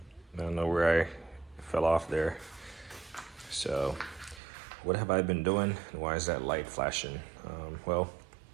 don't know where I fell off there. So what have I been doing, and why is that light flashing? Well,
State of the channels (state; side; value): drops out; left; at 4.4 s